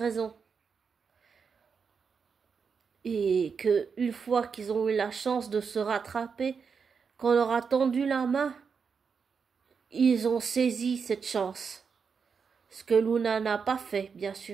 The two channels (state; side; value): quieter; left; 5.9 dB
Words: Et que une fois qu'ils ont eu la chance de se rattraper, qu'on leur a tendu la main, ils ont saisi cette chance. Ce que Luna n'a pas fait, bien